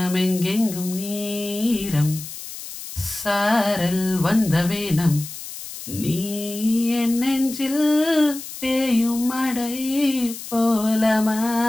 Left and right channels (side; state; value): left; noise; hiss, 11 dB below the sound